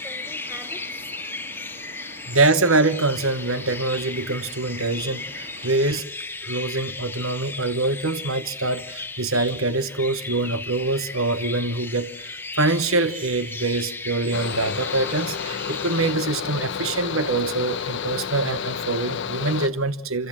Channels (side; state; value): both; normal; correlation -0.11